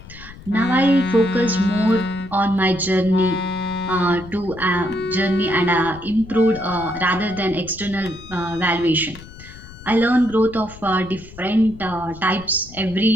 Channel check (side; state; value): left; noise; rumble, 17 dB below the sound